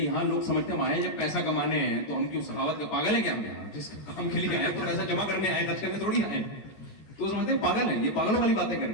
لوگ سمجھتے ہیں ہمارے جب پیسہ کمانے ہیں تو ہم کیوں سخاوت کا پاگل ہیں کیا؟ ہم یہاں جس کام کے لیے آئے تو پیسہ جمع کرنے آئے, خرچ کرنے تھوڑی آئے. تو سمجھتے ہیں پاگل ہیں, یہ پاگلوں والی باتیں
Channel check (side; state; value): right; late; 13 ms